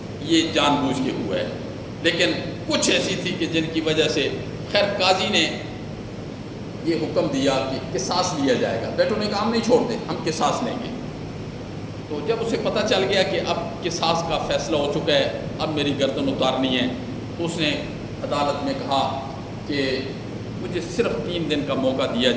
یہ جان بوجھ کے ہوا ہے، لیکن کچھ ایسی تھی کہ جن کی وجہ سے خیر قاضی نے یہ حکم دیا کہ قصاص لیا جائے گا۔ بیٹوں نے کہا ہم نہیں چھوڑتے، ہم قصاص لیں گے۔ تو جب اسے پتہ چل گیا کہ اب قصاص کا فیصلہ ہو چکا ہے، اب میری گردن اتارنی ہے، تو اس نے عدالت میں کہا کہ مجھے صرف 3 دن کا موقع دیا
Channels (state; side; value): identical; both; correlation 1.00